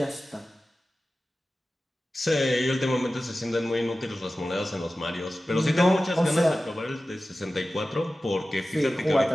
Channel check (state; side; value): normal; both; correlation 0.95